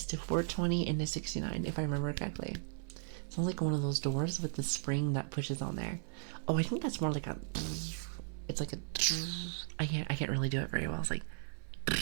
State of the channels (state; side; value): silent; left; 53 dB below the other